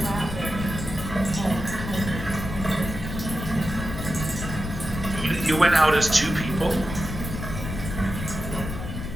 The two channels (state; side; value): noise; left; rumble, 7 dB below the sound